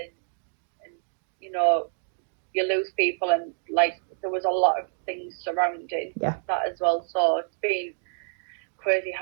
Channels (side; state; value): left; silent; digital silence